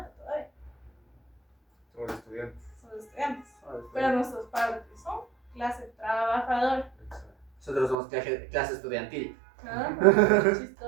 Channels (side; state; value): left; drops out; at 8.0 s